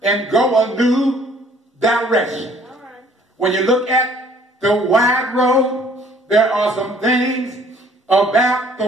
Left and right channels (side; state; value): both; normal; correlation 0.58